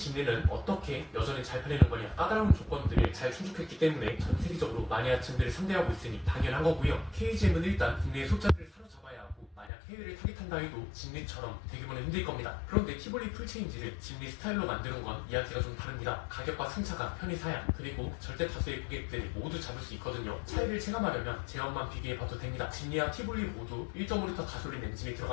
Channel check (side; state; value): right; drops out; at 9.7 s